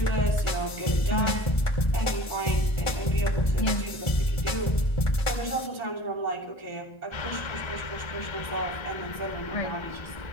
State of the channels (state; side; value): late; right; 1.3 ms